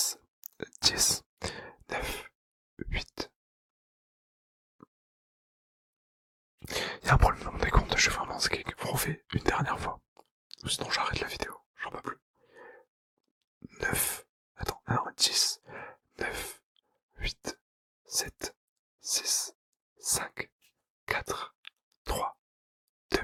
10, 9, 8. Il y a un problème dans mon décompte, je suis vraiment skeg. Vous refait une dernière fois. Sinon j'arrête la vidéo, j'en peux plus. 9, attends, non, 10, 9, 8, 7, 6, 5, 4, 3, 2,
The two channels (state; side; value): identical; both; correlation 1.00